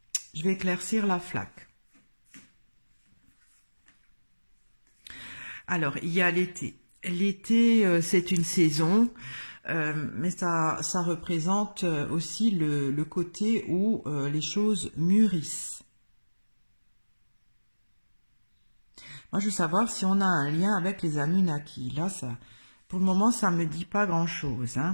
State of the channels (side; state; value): both; inverted; correlation -1.00